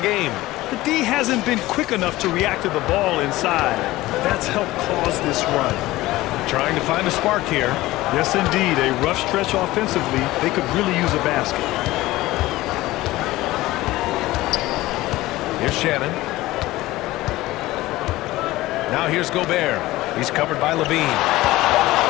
The D hasn't been quick enough to react to the ball inside. That's helped cause this run. Trying to find a spark here. Yes, indeed. A rough stretch offensively. They could really use a basket. Here's Shannon. Now here's Gobert. He's covered by Levine.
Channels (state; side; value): quieter; right; 17.8 dB